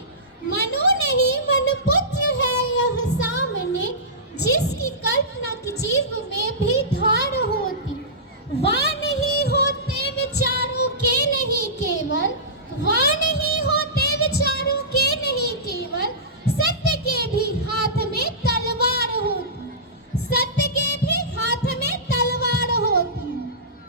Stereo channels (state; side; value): normal; both; correlation -0.19